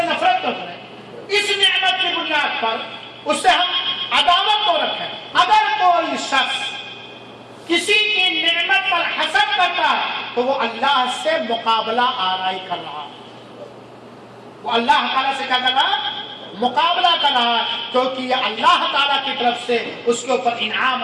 نفرت تو کریں، اس نعمت کی بنیاد پر اس سے ہم عداوت تو رکھیں۔ اگر کوئی شخص کسی کی نعمت پر حسد کرتا ہے تو وہ اللہ سے مقابلہ آرائی کر رہا ہے، وہ اللہ تعالیٰ سے کیا کر رہا ہے؟ مقابلہ کر رہا ہے، کیونکہ یہ اللہ تعالیٰ کی طرف سے اس کے اوپر انعام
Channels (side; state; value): both; identical; correlation 1.00